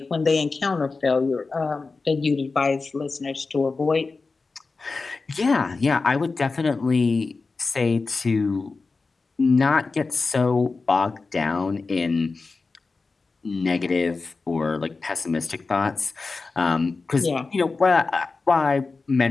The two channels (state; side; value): quieter; right; 4.0 dB